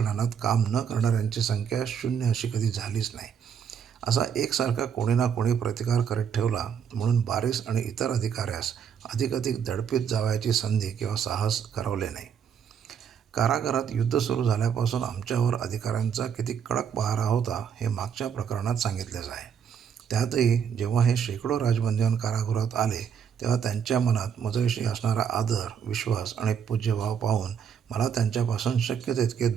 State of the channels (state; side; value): quieter; left; 7.6 dB